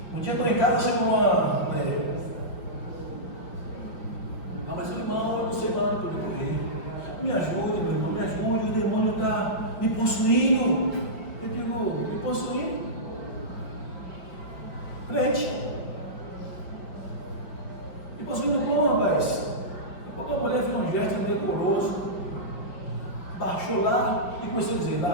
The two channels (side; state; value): right; late; 5.3 ms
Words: Um dia eu estou em casa, chegou uma mulher. Mas eu irmão, eu não sei mais onde eu correr. Me ajude, meu irmão, me ajude, o demônio está me possuindo. Eu digo: me possuindo? Crente. Me possuindo como, rapaz? Quando a mulher fez um gesto indecoroso, baixou lá e começou a dizer: